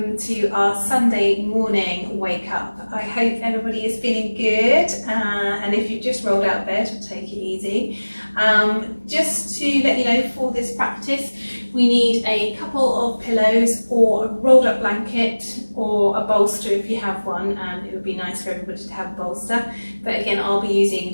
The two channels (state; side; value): inverted; both; correlation -1.00